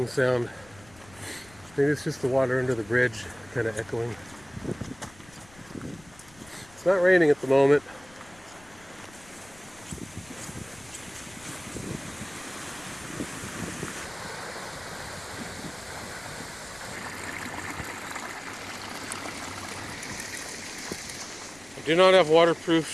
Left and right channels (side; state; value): left; noise; rumble, 24 dB below the sound